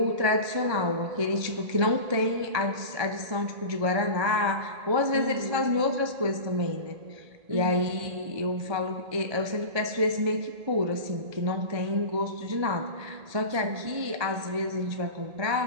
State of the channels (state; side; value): late; left; 1.3 ms